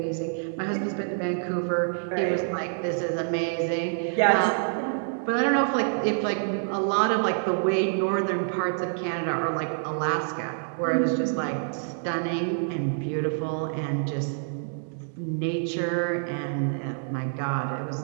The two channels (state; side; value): silent; left; digital silence